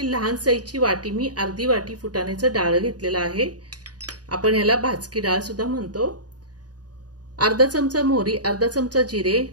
लहान साइजची वाटी मी अर्धी वाटी फुटाण्याचं डाळ घेतलेला आहे। आपण याला भाजकी डाळ सुद्धा म्हणतो। अर्धा चमचा मोहरी, अर्धा चमचा जिरे,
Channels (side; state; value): left; late; 0.68 ms